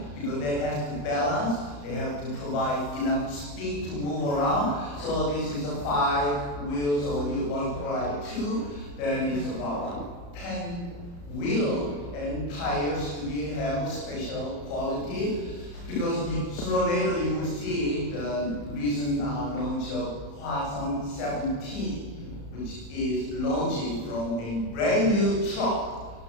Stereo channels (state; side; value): late; right; 35 ms